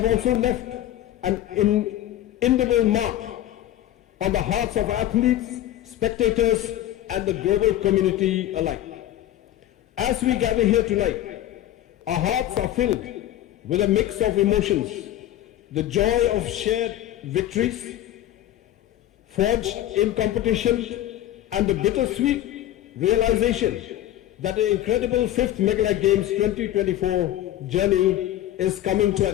also left an indelible mark on the hearts of athletes, spectators, and the global community alike. As we gather here tonight, our hearts are filled with a mix of emotions, the joy of shared victories forged in competition, and the bittersweet realization that the incredible 5th Meghalaya Games 2024 journey is coming to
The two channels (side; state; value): right; quieter; 13.0 dB